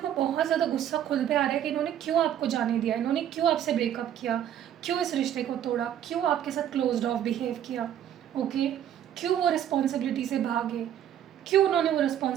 को बहुत ज़्यादा गुस्सा खुद पे आ रहा है कि इन्होंने क्यों आपको जाने दिया, इन्होंने क्यों आपसे ब्रेकअप किया, क्यों इस रिश्ते को तोड़ा, क्यों आपके साथ क्लोज्ड ऑफ बिहेव किया, ओके, क्यों वो रिस्पॉन्सिबिलिटी से भागे, क्यों उन्होंने वो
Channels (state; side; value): quieter; left; 10.4 dB